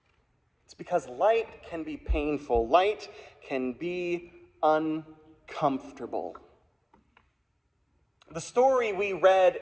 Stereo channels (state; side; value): identical; both; correlation 1.00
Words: It's because light can be painful. Light can be uncomfortable. The story we read